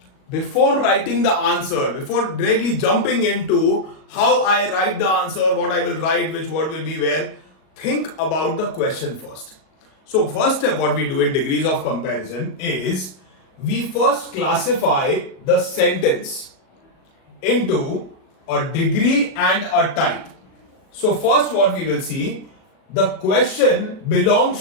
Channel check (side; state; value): right; late; 38 ms